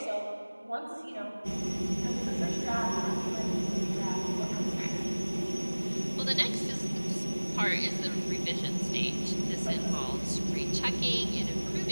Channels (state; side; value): inverted; both; correlation -1.00